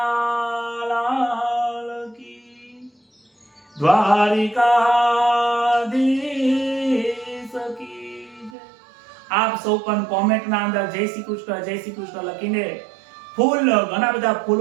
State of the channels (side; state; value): left; drops out; at 8.6 s